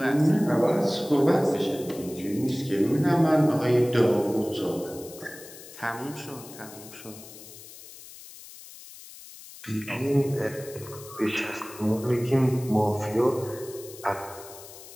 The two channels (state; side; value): noise; left; hiss, 17 dB below the sound